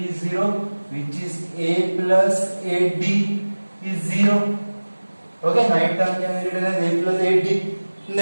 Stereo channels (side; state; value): both; inverted; correlation -1.00